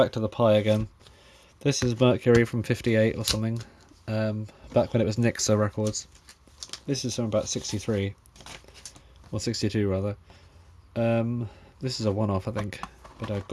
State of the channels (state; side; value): identical; both; correlation 1.00